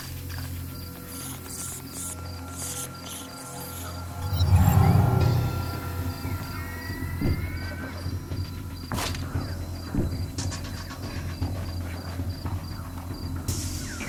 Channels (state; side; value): identical; both; correlation 1.00